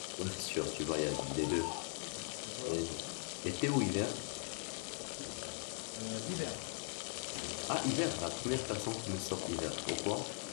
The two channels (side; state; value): right; quieter; 32.9 dB